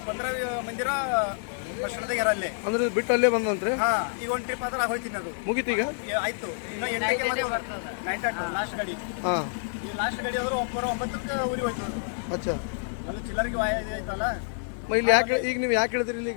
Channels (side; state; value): right; silent; digital silence